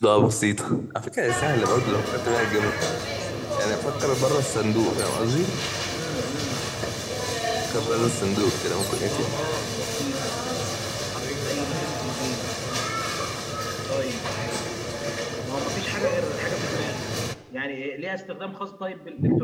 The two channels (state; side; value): identical; both; correlation 1.00